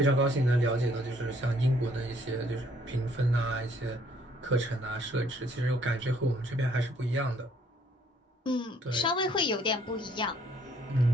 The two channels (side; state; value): both; normal; correlation 0.64